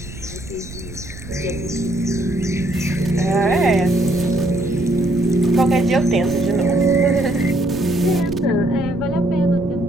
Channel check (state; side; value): noise; right; rumble, 14 dB below the sound